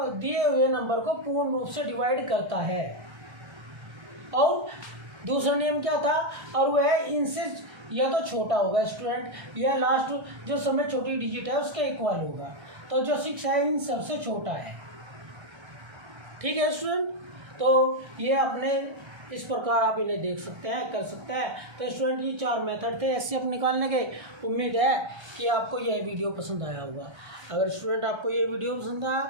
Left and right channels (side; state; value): left; late; 1.3 ms